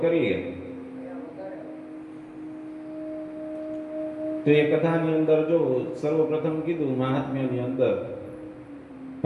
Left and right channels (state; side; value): identical; both; correlation 1.00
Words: કરીએ તો એ કથાની અંદર જો સર્વપ્રથમ કીધું મહાત્મ્યની અંદર